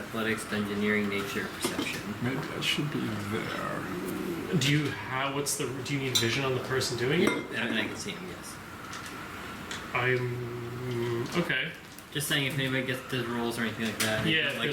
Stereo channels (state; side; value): identical; both; correlation 1.00